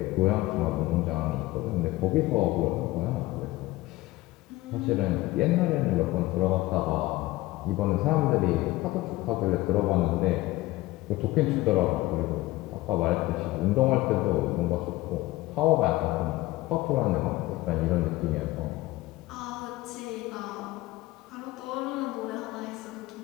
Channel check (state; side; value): quieter; right; 18.6 dB